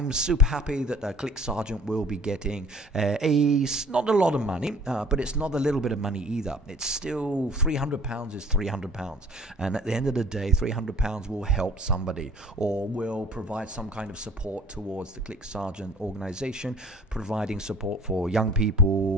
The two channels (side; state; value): both; normal; correlation 0.49